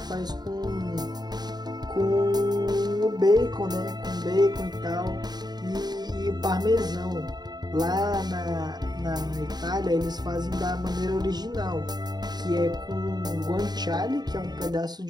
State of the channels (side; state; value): left; late; 0.20 ms